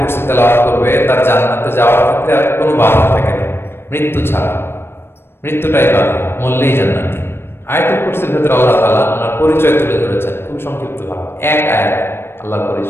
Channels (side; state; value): right; late; 0.11 ms